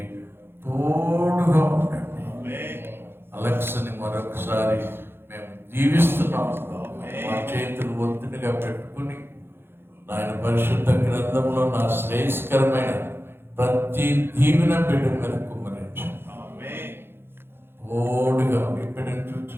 తోడుగా ఉండండి. అలెక్స్ని మరొకసారి మేము దీవిస్తున్నాం. మా చేతులు ఒత్తిడిగా పెట్టుకుని నాయన పరిశుద్ధ గ్రంథంలో నా శ్రేయస్కరమైన ప్రతి దీవెన బిడ్డ మీద కుమ్మరించండి. తోడుగా బిడ్డను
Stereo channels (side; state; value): left; late; 0.11 ms